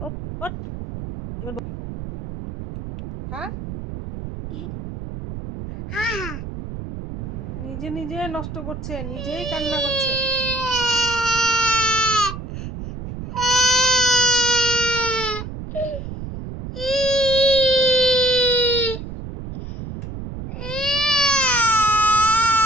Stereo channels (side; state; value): right; noise; rumble, 9 dB below the sound